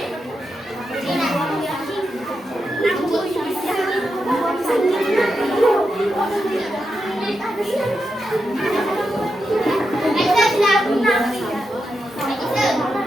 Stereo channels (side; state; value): both; normal; correlation 0.87